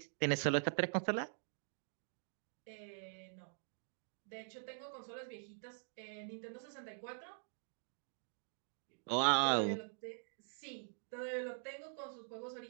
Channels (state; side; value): silent; left; digital silence